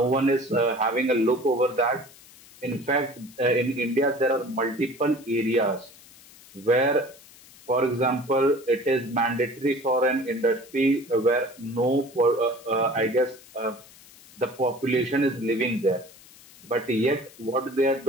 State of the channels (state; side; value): noise; left; hiss, 23 dB below the sound